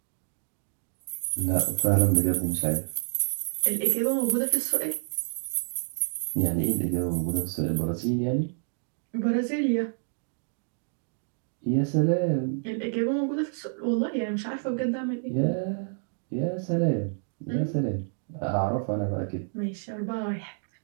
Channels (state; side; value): silent; left; digital silence